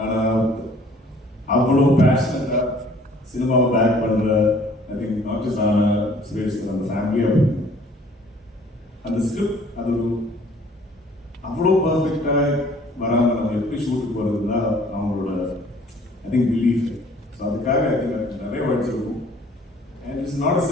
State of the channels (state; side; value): normal; both; correlation 0.56